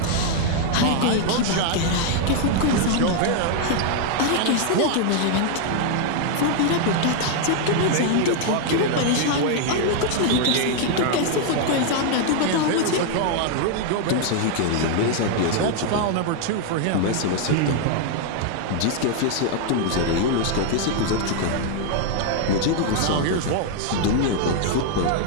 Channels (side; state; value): both; different; correlation 0.00